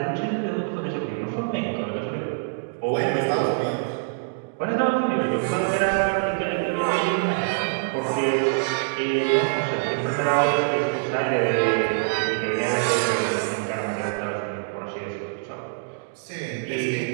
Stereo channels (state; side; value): silent; left; digital silence